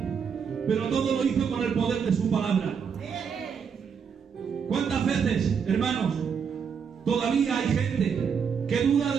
Pero todo lo hizo con el poder de su palabra. ¿Cuántas veces, hermanos, todavía hay gente que duda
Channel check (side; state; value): left; quieter; 6.7 dB